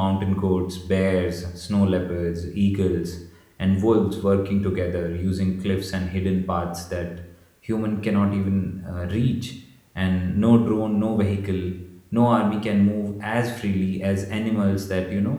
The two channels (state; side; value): identical; both; correlation 1.00